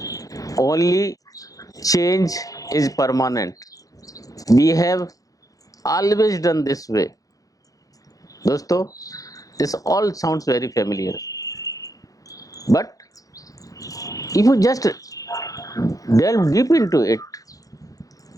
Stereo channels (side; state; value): right; late; 0.17 ms